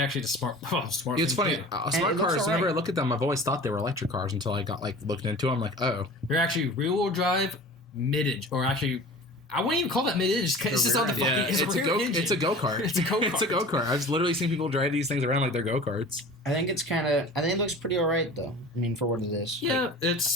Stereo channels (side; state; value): both; normal; correlation 0.40